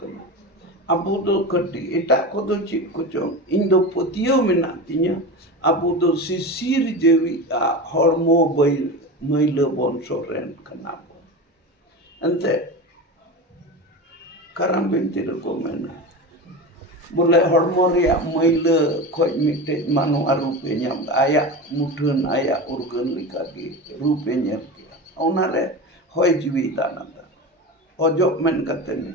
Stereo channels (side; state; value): both; normal; correlation 0.26